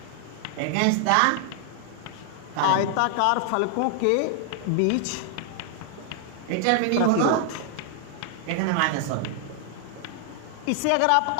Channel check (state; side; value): different; both; correlation 0.00